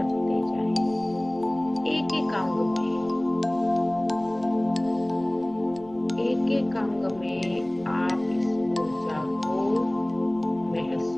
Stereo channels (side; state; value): left; noise; rumble, 25 dB below the sound